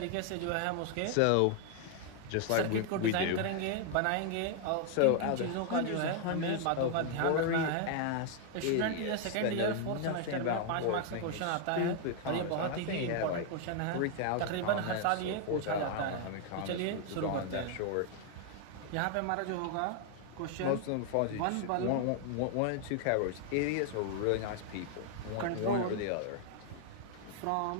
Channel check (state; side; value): different; both; correlation 0.00